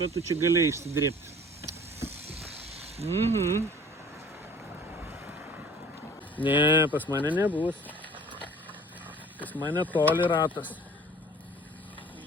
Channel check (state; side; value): normal; both; correlation 0.48